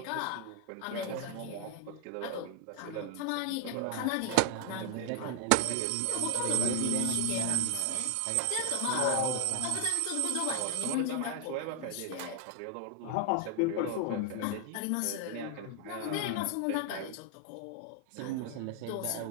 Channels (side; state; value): both; different; correlation 0.00